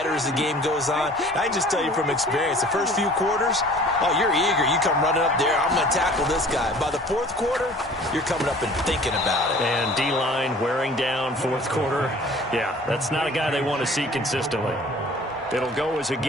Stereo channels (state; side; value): normal; both; correlation 0.48